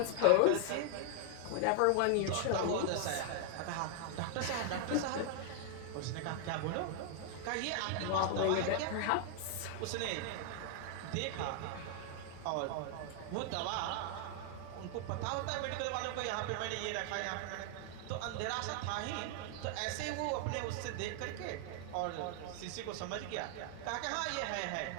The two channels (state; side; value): different; both; correlation 0.00